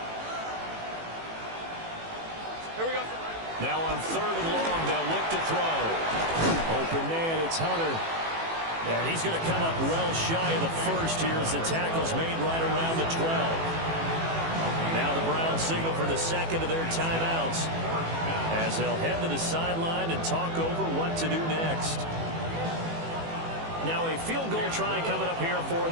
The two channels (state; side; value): late; left; 18 ms